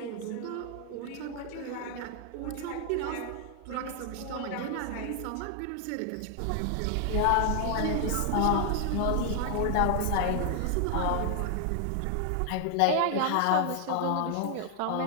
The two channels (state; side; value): different; both; correlation 0.00